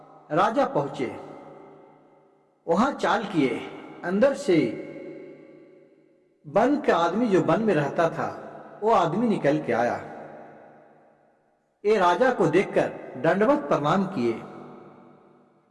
राजा पहुंचे, वहां चाल किए। अंदर से वन का आदमी, जो वन में रहता था, वो आदमी निकल के आया। ये राजा को देखकर दंडवत प्रणाम किए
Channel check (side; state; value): both; identical; correlation 1.00